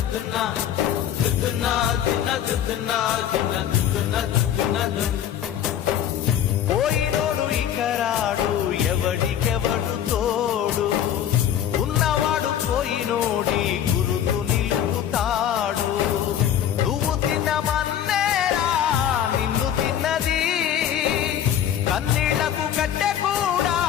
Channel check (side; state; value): right; quieter; 10.2 dB